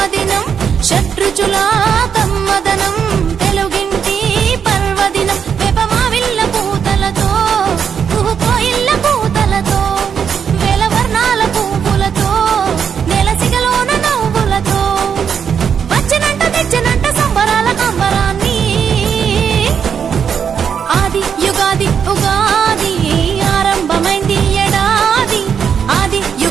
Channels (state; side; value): quieter; left; 7.3 dB